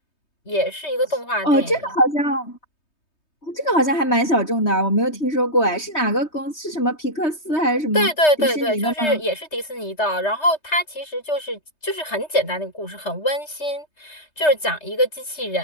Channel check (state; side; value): late; right; 3.2 ms